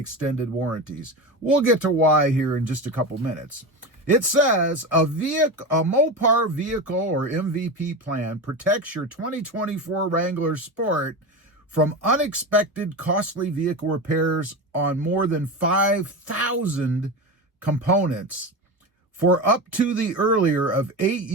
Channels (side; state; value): both; normal; correlation 0.22